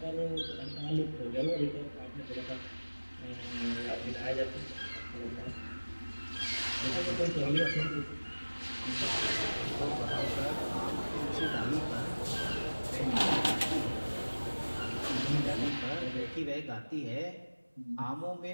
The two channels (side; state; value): both; inverted; correlation -1.00